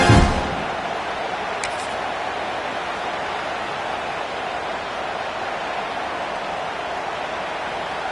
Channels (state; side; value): identical; both; correlation 1.00